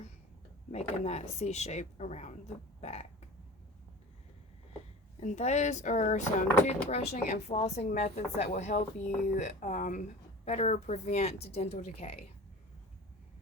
making that C shape around the back. And those are some toothbrushing and flossing methods that will help you better prevent dental decay.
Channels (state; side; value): normal; both; correlation 0.36